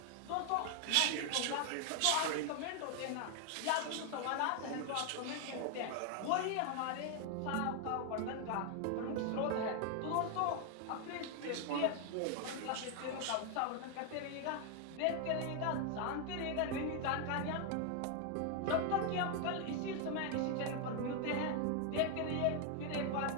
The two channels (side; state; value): both; different; correlation 0.00